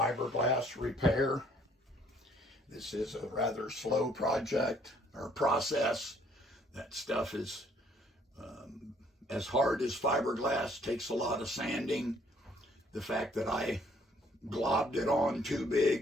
repair. This is a rather slow project or process. That stuff is as hard as fiberglass, takes a lot of sanding. The fact that I globbed it on too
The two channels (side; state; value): both; normal; correlation 0.62